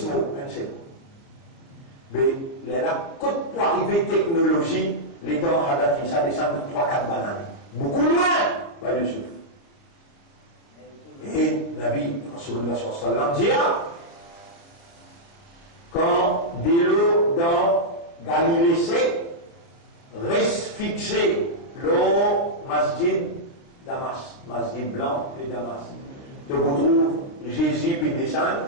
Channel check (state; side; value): late; right; 30 ms